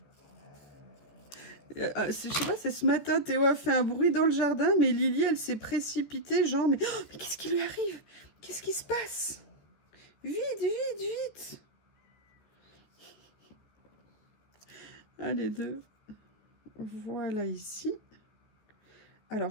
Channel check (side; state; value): right; late; 14 ms